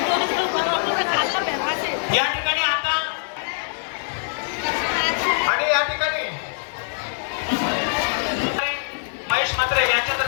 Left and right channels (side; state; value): right; silent; digital silence